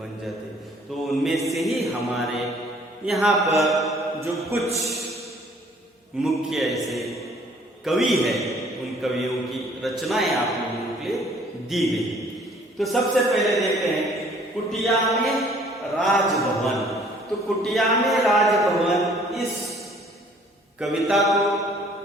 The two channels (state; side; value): normal; both; correlation 0.57